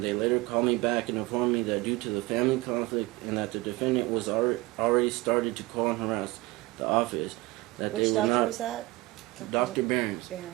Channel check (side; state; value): left; quieter; 21.3 dB